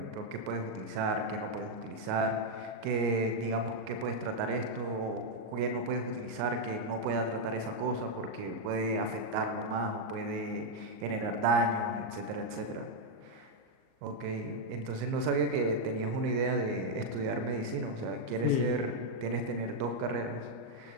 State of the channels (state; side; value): late; left; 38 ms